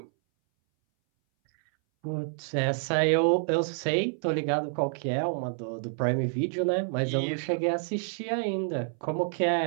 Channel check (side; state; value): left; silent; 59 dB below the other